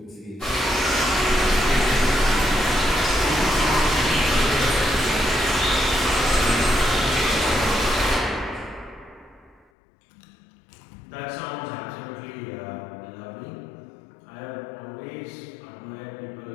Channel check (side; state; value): right; drops out; at 9.7 s